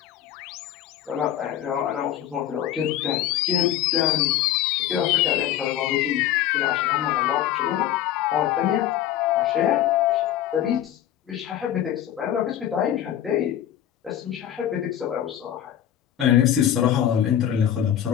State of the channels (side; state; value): right; quieter; 11.2 dB